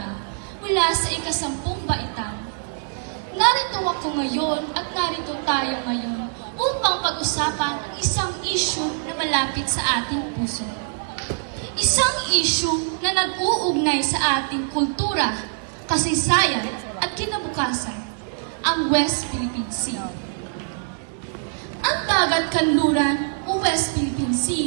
mula sa ika-10 baitang. Narito ako ngayon at narito tayo ngayon upang pag-usapan ang isang issue na malapit sa ating puso. Isang issue na nag-uugnay sa ating kultura, kasaysayan at kinabukasan, ang West Philippine Sea. Ang dagat kanluran o West Philippine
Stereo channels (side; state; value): left; silent; 60 dB below the other